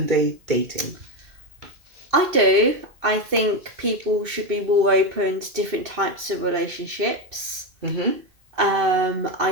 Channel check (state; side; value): late; left; 2.6 ms